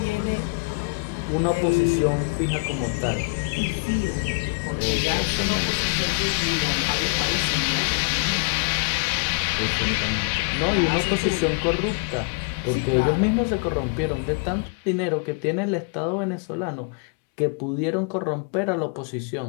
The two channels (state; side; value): quieter; right; 33.3 dB